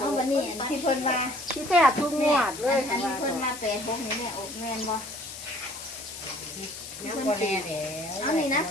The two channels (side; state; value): left; noise; hiss, 11 dB below the sound